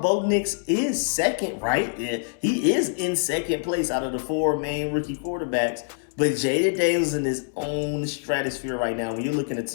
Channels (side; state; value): right; silent; 62 dB below the other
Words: Nix is second, right? Yeah, he is in second place out of the 4 main rookie quarterbacks. But Jayden Daniels in his own stratosphere right now. When you're